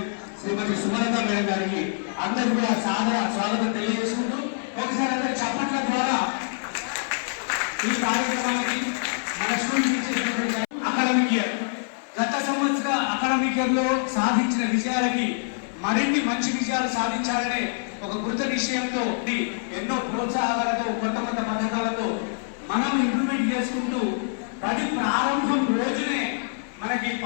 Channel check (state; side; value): silent; right; 62 dB below the other